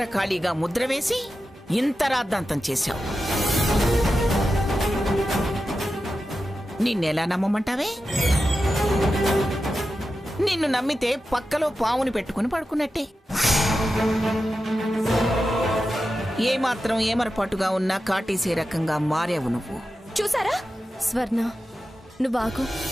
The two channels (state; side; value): normal; both; correlation 0.91